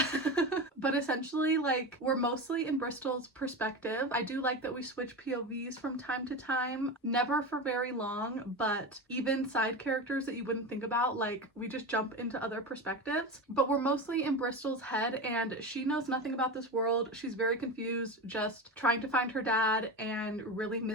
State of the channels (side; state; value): both; normal; correlation 0.23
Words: but essentially like we're mostly in Bristol's perspective. I do like that we switch POVs from time to time, never for very long, but even side characters that you wouldn't think about, like we just jump into other perspectives. But we're mostly in Bristol's head and she knows nothing about this world. She's very confused, just trying to find her dad and really